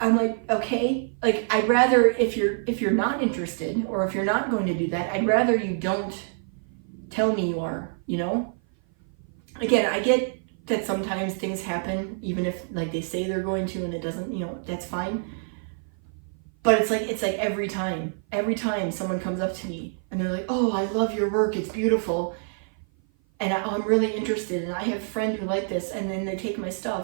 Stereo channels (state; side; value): silent; left; 56 dB below the other